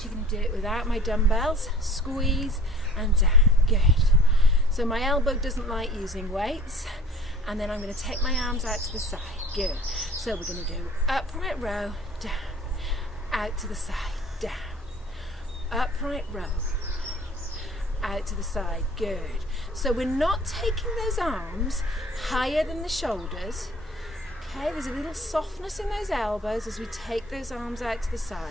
going to do it without my dumbbells. Squeeze and down. Good. So my elbow doesn't like using weights. And then I'm going to take my arms out to the side. Good. So we're going to do upright row, down, out to the side, down, upright row, out to the side. Good. So we're not taking those arms higher than the shoulders. Okay, there's a little softness in those elbows as we take those arms out to the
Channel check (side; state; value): both; normal; correlation 0.49